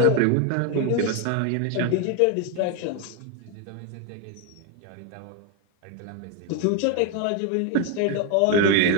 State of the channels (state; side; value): different; both; correlation 0.02